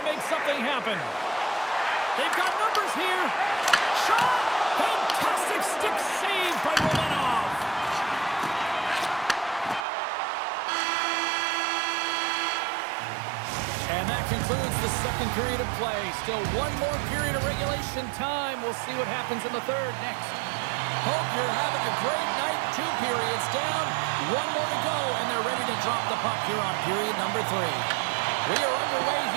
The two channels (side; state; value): left; drops out; at 9.9 s